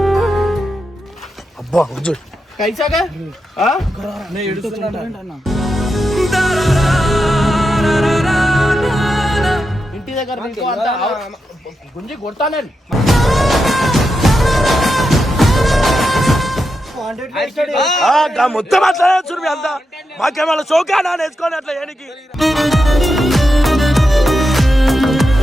అబ్బా కైసాగా ఇంటి దగ్గర గుంజి కొడతాను. మొత్తం అట్లా చూడు అంతా మాకేమన్నా చౌకానా నేర్చుకోని అట్లా ఏనికి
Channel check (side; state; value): both; normal; correlation 0.87